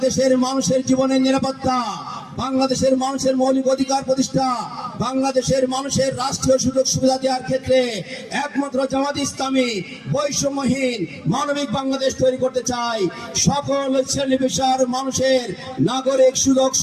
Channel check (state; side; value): identical; both; correlation 1.00